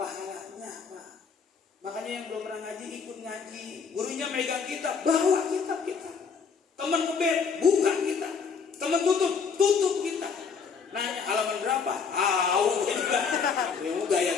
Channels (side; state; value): right; quieter; 5.7 dB